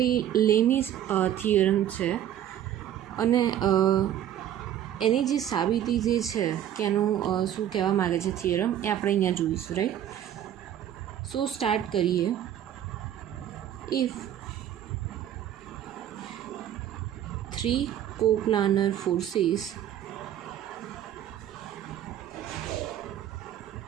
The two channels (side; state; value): left; quieter; 10.9 dB